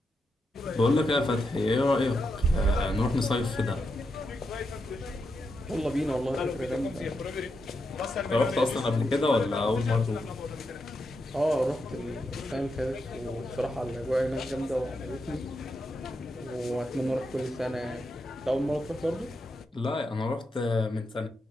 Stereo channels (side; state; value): both; normal; correlation 0.85